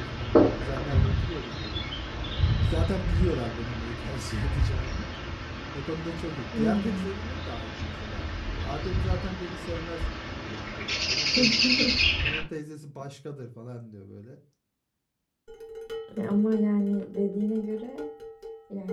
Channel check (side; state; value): both; identical; correlation 1.00